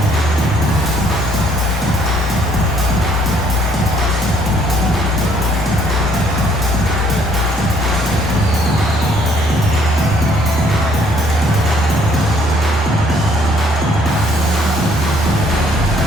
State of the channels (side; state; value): both; normal; correlation 0.63